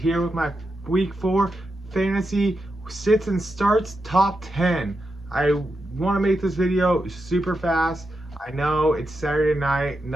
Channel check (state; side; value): normal; both; correlation 0.87